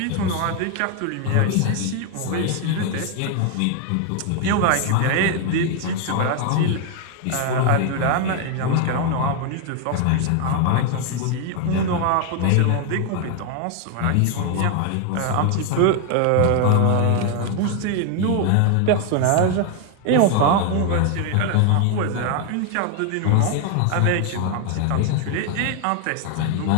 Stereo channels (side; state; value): both; different; correlation 0.01